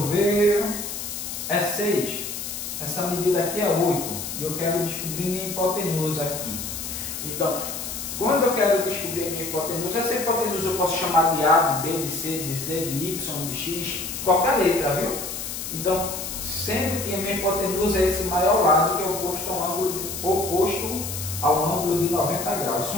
ver, é 6. Essa medida aqui é 8. E eu quero descobrir minha hipotenusa aqui. Então, quando eu quero descobrir minha hipotenusa, essa hipotenusa eu posso chamar de A, de B, de C, de Z, de Y, de X, qualquer letra, viu? Então, sendo que a minha hipotenusa é esse maior lado que é oposto ao ângulo de 90 graus. Se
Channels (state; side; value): noise; left; hiss, 6 dB below the sound